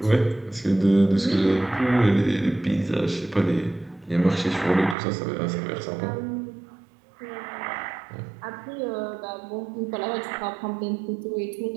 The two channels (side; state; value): left; drops out; at 5.0 s